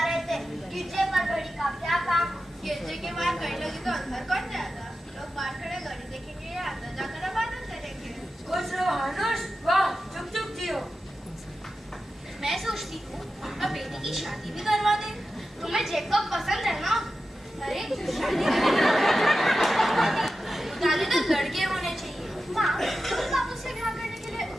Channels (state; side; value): normal; both; correlation 0.92